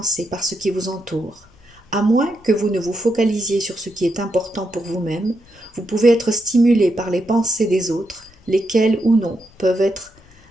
par ce qui vous entoure. À moins que vous ne vous focalisiez sur ce qui est important pour vous-même, vous pouvez être stimulé par les pensées des autres, lesquelles ou non peuvent être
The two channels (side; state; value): left; noise; rumble, 28 dB below the sound